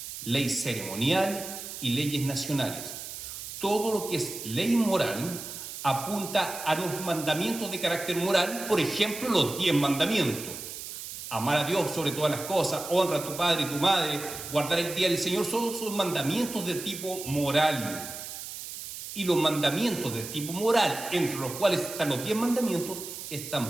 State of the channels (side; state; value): right; noise; hiss, 9 dB below the sound